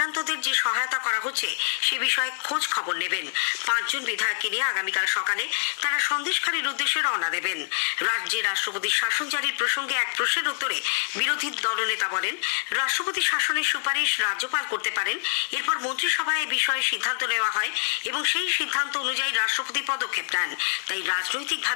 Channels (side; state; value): right; silent; digital silence